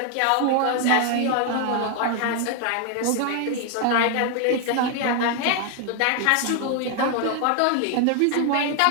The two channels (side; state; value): both; different; correlation 0.00